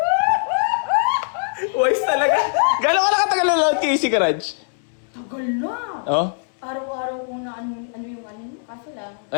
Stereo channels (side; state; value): right; silent; digital silence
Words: Wise talaga. Gano'n ka na katagal na load kay Easy Garage? Tagal na. Oh? Araw-araw ko na ano yung kaso lang.